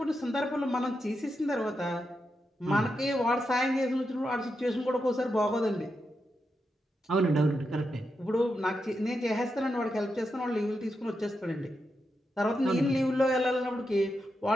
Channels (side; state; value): both; normal; correlation 0.86